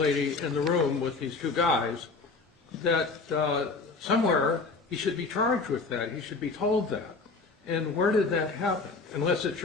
in the room with these 2 guys, that somewhere he should be charged with that. He should be told that. And where did that happen? Unless it's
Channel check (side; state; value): right; quieter; 4.0 dB